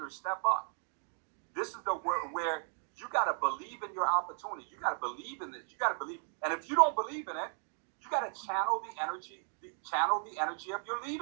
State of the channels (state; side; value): silent; left; 54 dB below the other